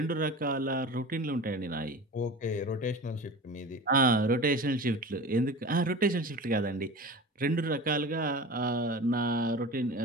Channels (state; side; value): normal; both; correlation 0.34